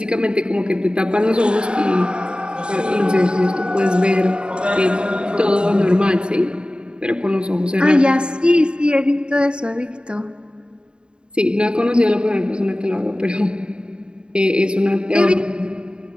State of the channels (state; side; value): late; left; 0.051 ms